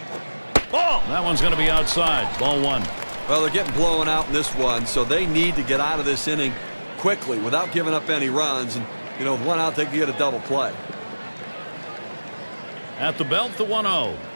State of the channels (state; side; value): inverted; both; correlation -1.00